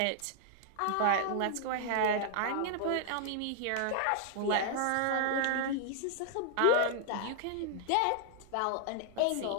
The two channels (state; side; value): different; both; correlation 0.00